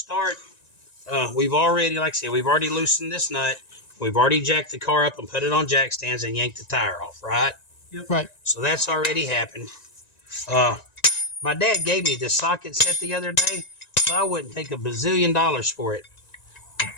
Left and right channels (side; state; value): right; late; 1.9 ms